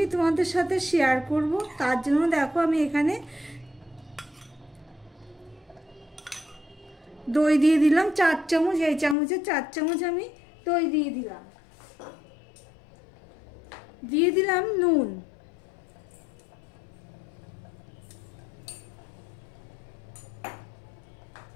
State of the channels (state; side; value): drops out; right; at 9.2 s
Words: তোমাদের সাথে শেয়ার করব। তার জন্য দেখো আমি এখানে দই দিয়ে দিলাম 4 চামচ। এই চামচে 4 চামচ আমি দই দিয়ে দিলাম। দিয়ে দিলাম নুন,